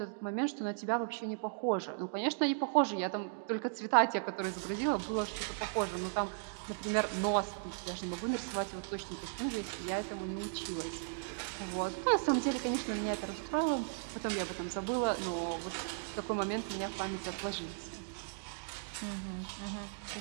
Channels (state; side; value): silent; left; digital silence